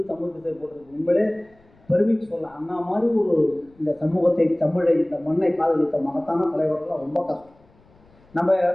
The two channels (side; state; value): left; noise; rumble, 30 dB below the sound